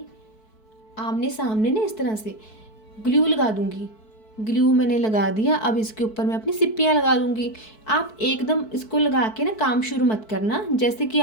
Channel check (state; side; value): late; right; 4.6 ms